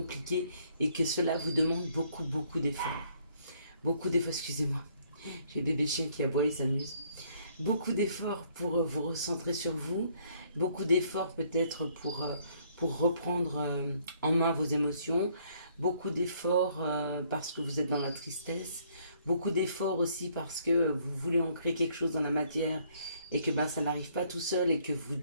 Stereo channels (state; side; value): inverted; both; correlation -0.65